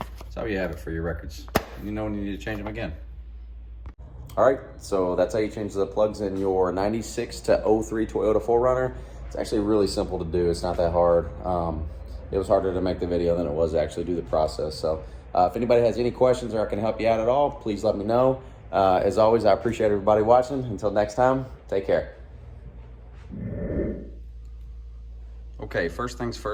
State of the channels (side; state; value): both; identical; correlation 1.00